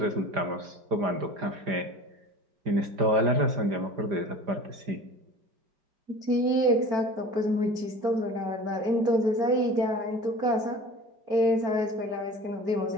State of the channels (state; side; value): late; left; 5.0 ms